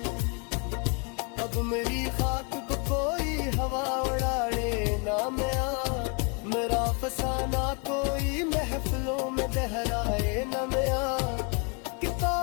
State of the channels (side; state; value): right; quieter; 34.3 dB